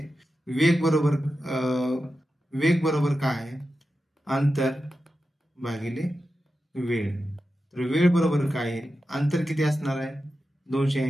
वेग बरोबर काय आहे, अंतर भागिले वेळ. तर वेळ बरोबर काय आहे, अंतर किती असणार आहे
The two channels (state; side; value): normal; both; correlation 0.91